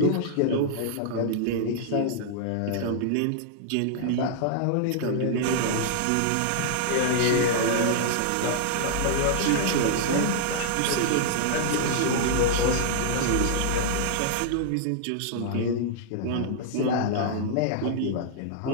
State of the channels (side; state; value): both; different; correlation -0.01